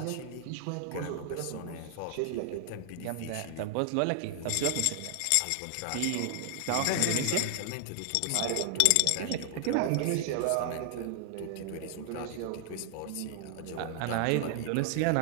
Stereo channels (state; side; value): different; both; correlation 0.00